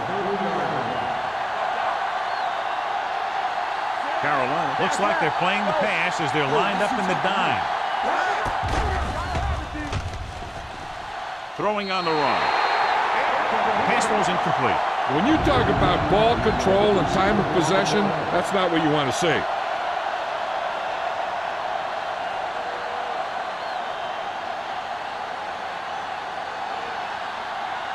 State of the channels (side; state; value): both; identical; correlation 1.00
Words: 30-yard line. Carolina looks like they're playing the pass as they're lined up in the dime. Throwing on the run. Pass was incomplete. When you talk about ball control and time of possession, that's not what you want to see.